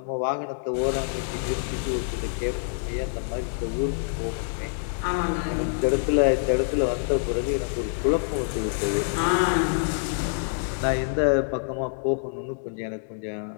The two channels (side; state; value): right; silent; digital silence